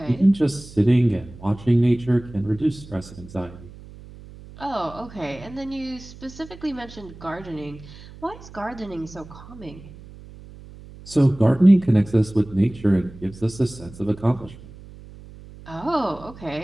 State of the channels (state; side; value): noise; right; hum, 18 dB below the sound